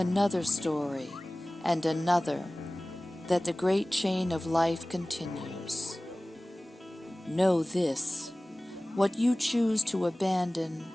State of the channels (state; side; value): normal; both; correlation 0.98